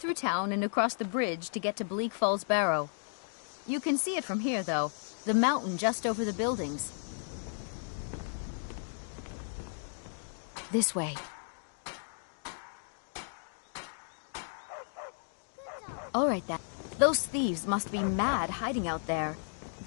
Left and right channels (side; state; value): right; silent; digital silence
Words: town and across the bridge to get to Bleak Falls Barrow. You can see it from here, though. The mountain just over the buildings. This way. All right, then. Those thieves must be mad hiding out there.